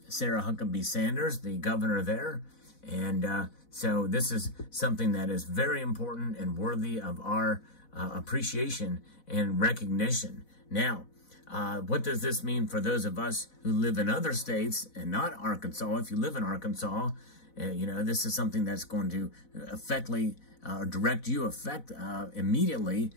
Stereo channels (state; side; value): late; right; 4.1 ms